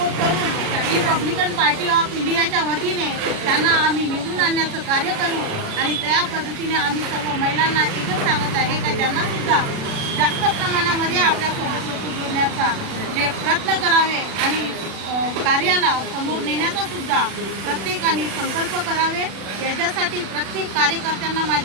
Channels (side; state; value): left; late; 36 ms